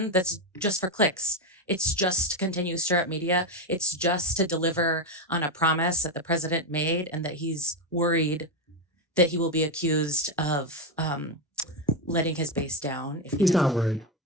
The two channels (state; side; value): normal; both; correlation 0.09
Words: that's just for clicks. It's just to continue to stir up media. It's just to deliver on a promise that the president made and that he's worried that he will be accused of letting his base down. If He's not worried.